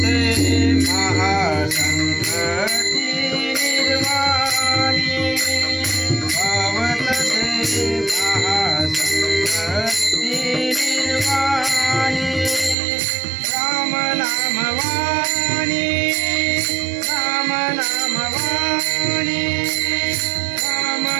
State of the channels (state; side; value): drops out; left; at 12.8 s